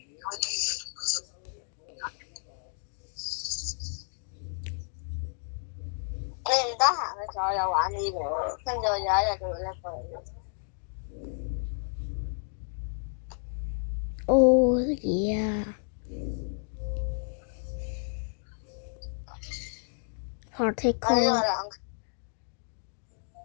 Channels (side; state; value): right; silent; digital silence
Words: 你唔得閒嘅時候又玩呢個，跟住我有一日就會拎過嚟。Oh yeah.我呢 Particle. 個兩